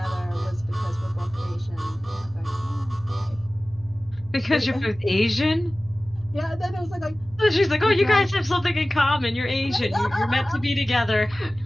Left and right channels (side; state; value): both; normal; correlation 0.97